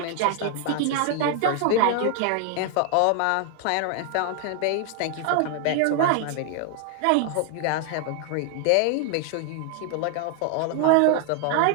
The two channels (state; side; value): different; both; correlation 0.00